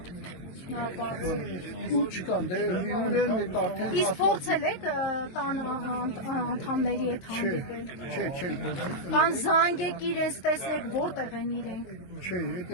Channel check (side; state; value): right; late; 23 ms